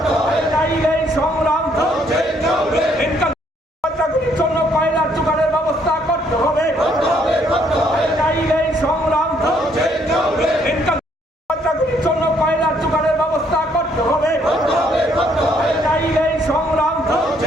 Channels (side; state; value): both; normal; correlation 0.68